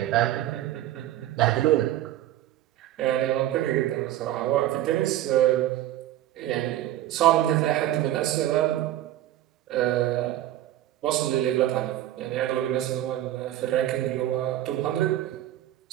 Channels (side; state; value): left; quieter; 13.7 dB